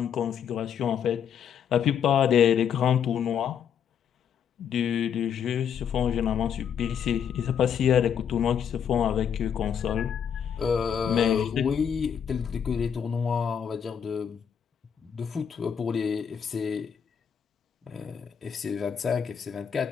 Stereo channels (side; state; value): right; quieter; 8.0 dB